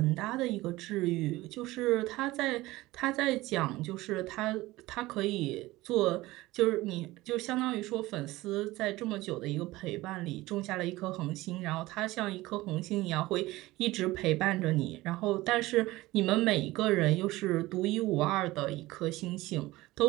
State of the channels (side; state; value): left; quieter; 18.9 dB